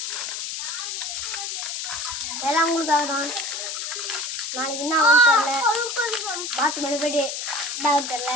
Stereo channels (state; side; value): noise; left; hiss, 4 dB below the sound